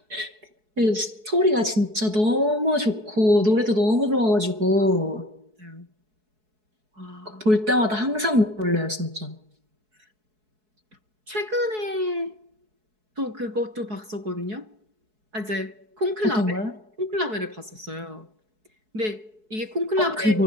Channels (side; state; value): left; late; 4.7 ms